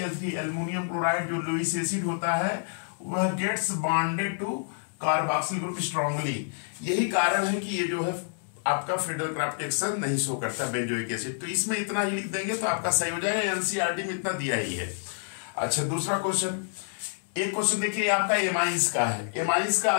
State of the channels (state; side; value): silent; right; 58 dB below the other